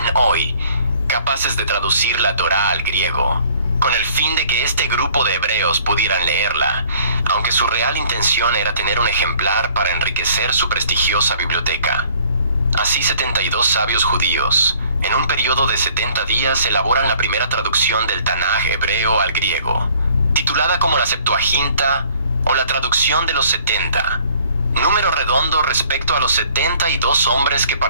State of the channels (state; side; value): inverted; both; correlation -0.56